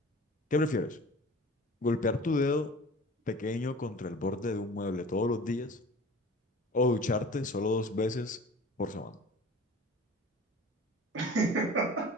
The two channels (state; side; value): normal; both; correlation 0.42